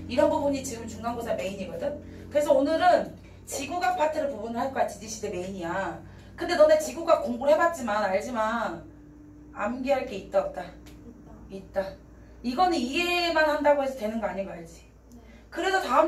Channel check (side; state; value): both; identical; correlation 1.00